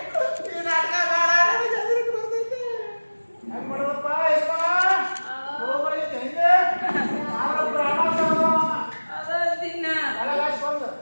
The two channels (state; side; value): inverted; both; correlation -1.00